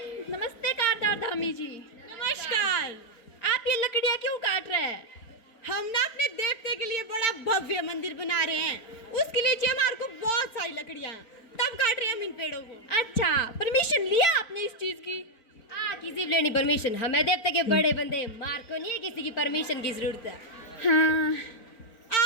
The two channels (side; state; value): right; late; 3.9 ms